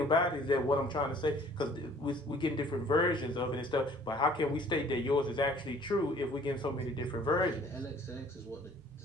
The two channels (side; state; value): both; normal; correlation 0.54